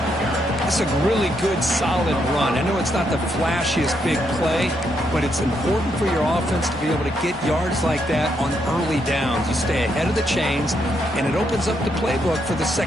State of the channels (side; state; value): both; normal; correlation 0.77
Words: It's a really good, solid run. I know it's not the flashiest big play, but it's important for your offense to be able to get yards like that on early downs. You stay ahead of the chains, and it opens up the playbook for the